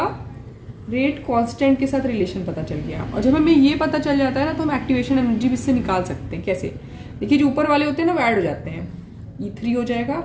रेट कांस्टेंट के साथ रिलेशन पता चल गया, और जब हमें ये पता चल जाता है ना, तो हम एक्टिवेशन एनर्जी भी इससे निकाल सकते हैं। कैसे, देखिए जो ऊपर वाले होते हैं ना वो ऐड हो जाते हैं, E3 हो जाएगा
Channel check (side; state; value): both; identical; correlation 1.00